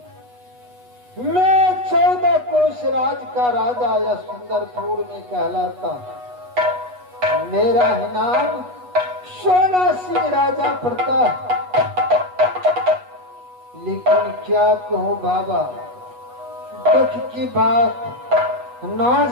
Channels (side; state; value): left; late; 8.2 ms